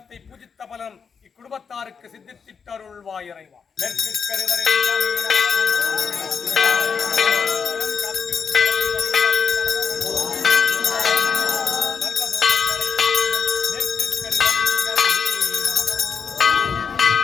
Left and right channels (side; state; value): right; quieter; 6.2 dB